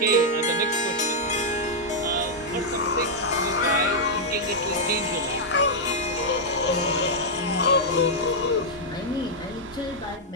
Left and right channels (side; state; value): both; normal; correlation -0.05